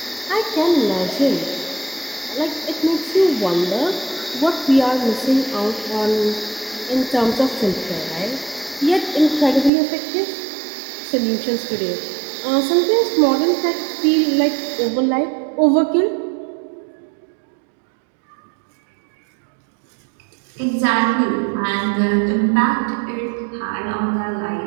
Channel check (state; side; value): drops out; left; at 9.7 s